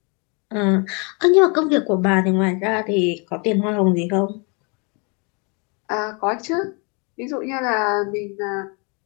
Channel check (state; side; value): quieter; right; 33.2 dB